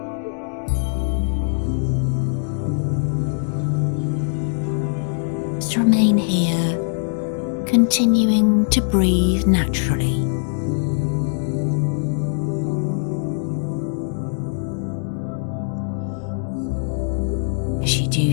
Just remain here, continuing to breathe naturally. As you do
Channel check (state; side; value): silent; right; 65 dB below the other